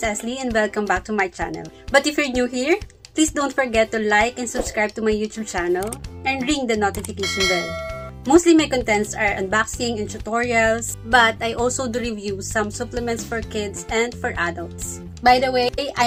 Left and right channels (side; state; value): both; identical; correlation 1.00